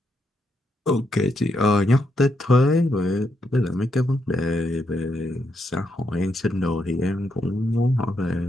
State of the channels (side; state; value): both; normal; correlation 0.80